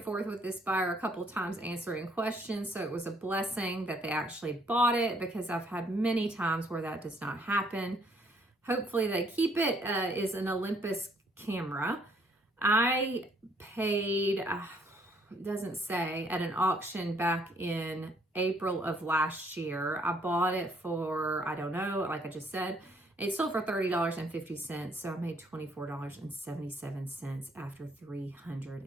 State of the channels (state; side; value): normal; both; correlation 0.65